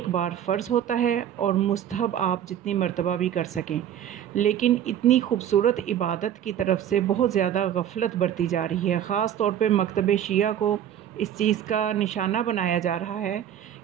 बार फ़र्ज़ होता है और मुस्तहब आप जितनी मर्तबा भी कर सकें। लेकिन इतनी खूबसूरत इबादत की तरफ से बहुत ज़्यादा गफलत बरती जा रही है। ख़ास तौर पे मकतब शिया को इस चीज़ का निशाना बनाया जा रहा है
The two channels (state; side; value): quieter; left; 10.1 dB